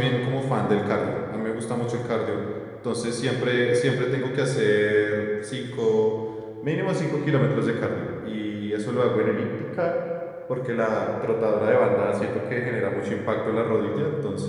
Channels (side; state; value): both; identical; correlation 1.00